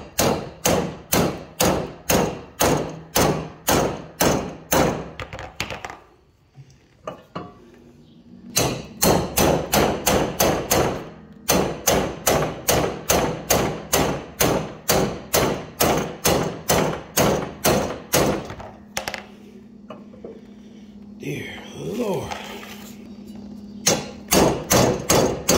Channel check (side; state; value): both; identical; correlation 1.00